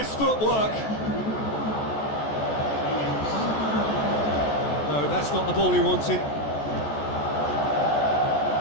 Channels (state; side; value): late; right; 14 ms